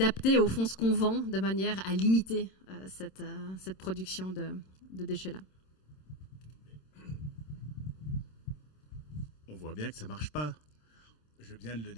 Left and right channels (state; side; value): late; right; 26 ms